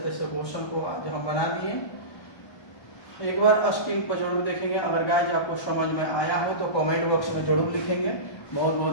तैसे क्वेश्चन को आज हम बना दिए। एक बार स्क्रीन पर जरूर देखेंगे। अगर गाइस आपको समझ में आया हो तो कमेंट बॉक्स में जरूर लिखेंगे। बहुत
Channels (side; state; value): right; late; 1.3 ms